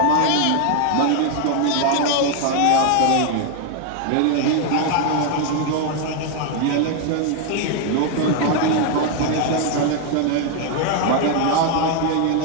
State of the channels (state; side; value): different; both; correlation 0.01